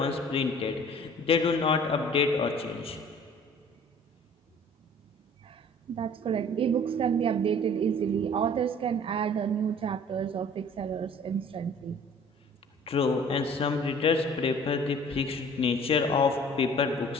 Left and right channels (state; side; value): normal; both; correlation 0.49